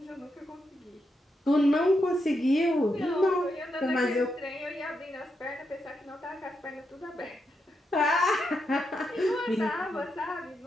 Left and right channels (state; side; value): normal; both; correlation 0.83